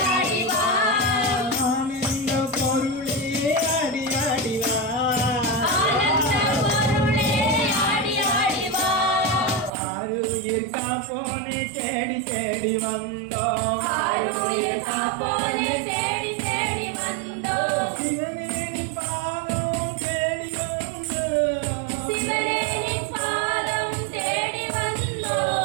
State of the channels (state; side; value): drops out; left; at 9.7 s